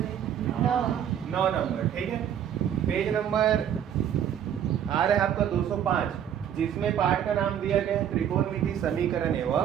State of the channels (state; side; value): quieter; left; 9.5 dB